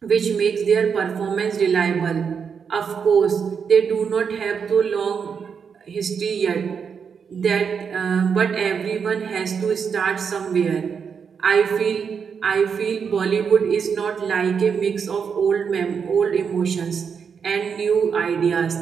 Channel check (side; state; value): left; quieter; 6.5 dB